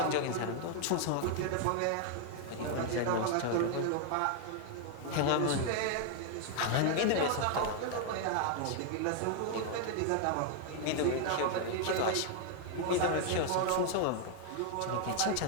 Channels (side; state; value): both; different; correlation 0.00